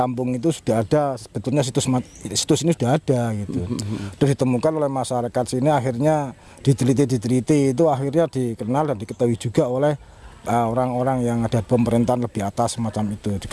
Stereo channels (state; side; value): identical; both; correlation 1.00